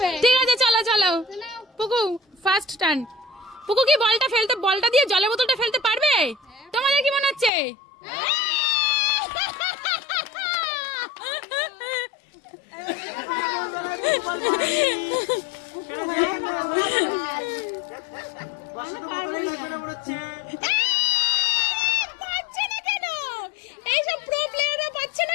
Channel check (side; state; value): right; drops out; at 7.5 s